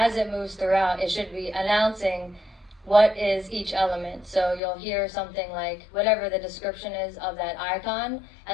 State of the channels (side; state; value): right; drops out; at 4.6 s